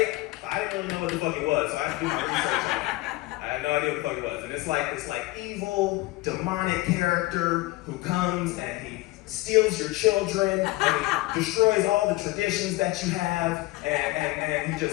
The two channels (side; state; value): right; quieter; 20.1 dB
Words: I didn't really know what the fuck it was, so I had to do my research on it. I had no idea what the fuck it was. And it's like this evil, demonic character who comes and he steals your children and he destroys all the traditions that you have and he